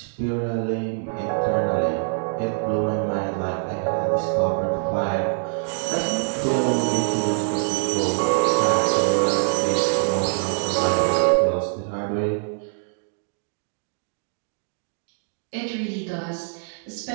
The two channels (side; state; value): left; silent; 63 dB below the other